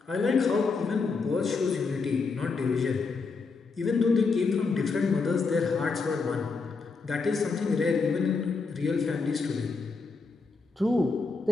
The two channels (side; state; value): right; quieter; 4.5 dB